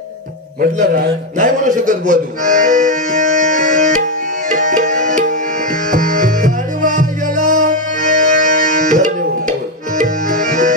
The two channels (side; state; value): both; normal; correlation 0.06